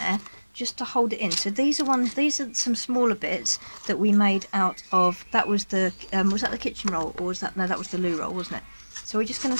just to hold it in. So these are some smaller bits that we made out of, that was the was that the kitchen roll, or was that, no, that was the loo roll, wasn't it? So we're just going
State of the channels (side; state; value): both; inverted; correlation -1.00